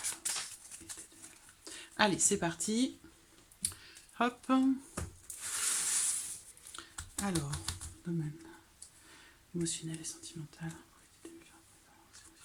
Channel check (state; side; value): identical; both; correlation 1.00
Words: Allez, c'est parti. Hop. Alors, domaine émotionnel et sentimental.